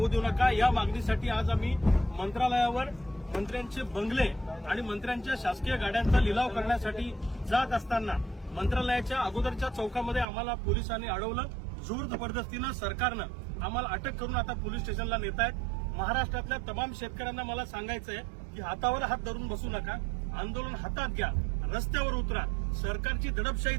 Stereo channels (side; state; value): left; drops out; at 10.2 s